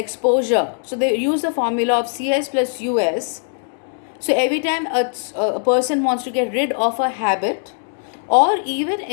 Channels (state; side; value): silent; right; digital silence